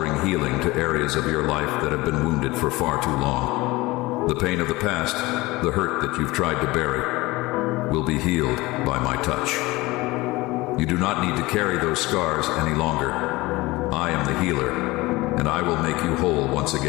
healing to areas of your life that have been wounded for far too long. The pain of the past, the hurt that you've tried to bury, will be healed by my touch. You do not need to carry those scars any longer. I am the healer, and I will make you whole once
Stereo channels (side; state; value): right; quieter; 20.9 dB